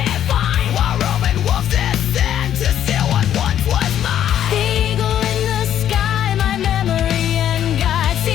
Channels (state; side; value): quieter; right; 10.6 dB